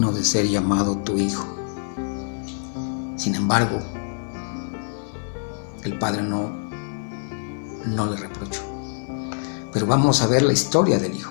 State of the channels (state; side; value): silent; right; 59 dB below the other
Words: de ser llamado tu hijo. Sin embargo, el padre no le reprochó. Pero vamos a ver la historia del